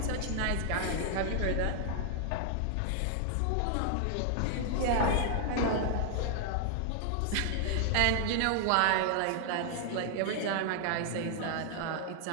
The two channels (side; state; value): both; different; correlation 0.00